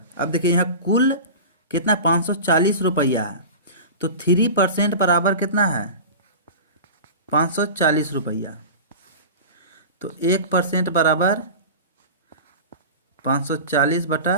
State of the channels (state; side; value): inverted; both; correlation -0.31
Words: अब देखिए यहाँ कुल कितना 540 रुपया है, तो 3% बराबर कितना है 540 रुपया, तो 1% बराबर